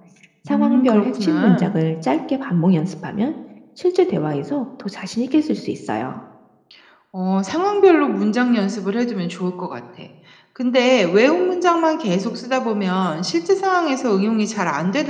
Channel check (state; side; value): identical; both; correlation 1.00